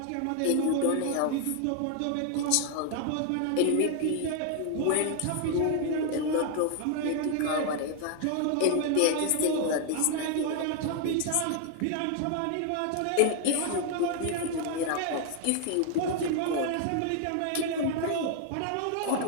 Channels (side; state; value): both; different; correlation 0.00